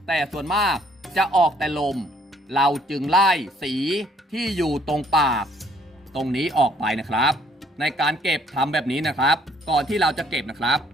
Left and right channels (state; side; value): normal; both; correlation 0.63